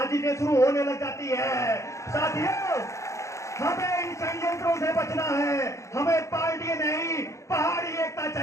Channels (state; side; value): late; right; 0.14 ms